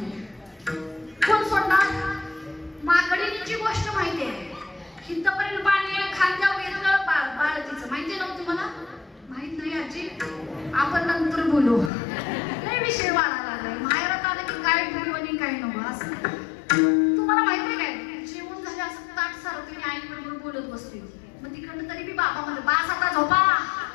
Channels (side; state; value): right; drops out; at 11.9 s